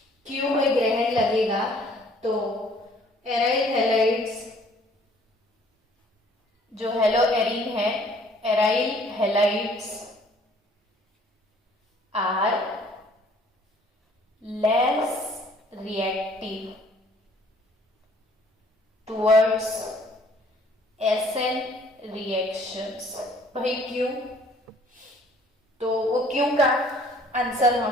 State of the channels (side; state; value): both; normal; correlation 0.58